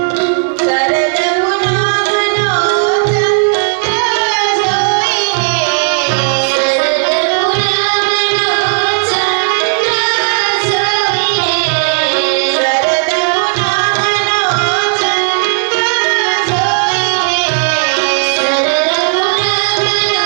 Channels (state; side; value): silent; left; digital silence